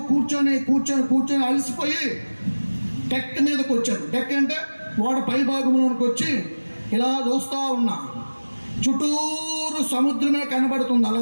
కూర్చొని అలసిపోయి డెక్ మీదకి వచ్చాను. డెక్ అంటే ఓడ పై భాగంలోనికి వచ్చి ఇలా చూస్తూ ఉన్నా. చుట్టూరు సముద్రమే కనబడుతుంది.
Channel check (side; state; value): both; inverted; correlation -1.00